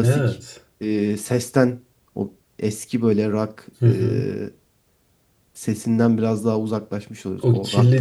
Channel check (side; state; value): both; identical; correlation 1.00